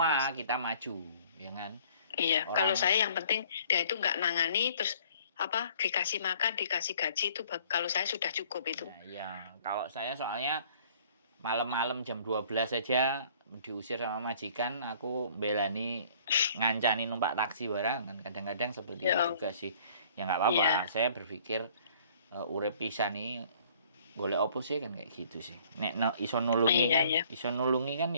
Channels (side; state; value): both; inverted; correlation -0.56